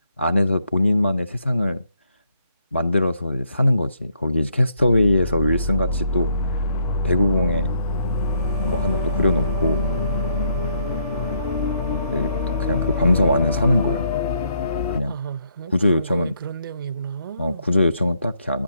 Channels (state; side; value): inverted; both; correlation -0.73